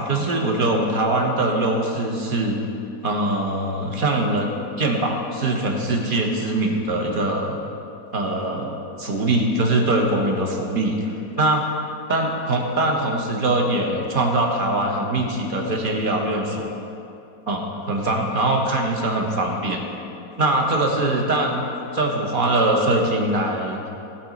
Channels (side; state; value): right; late; 4.2 ms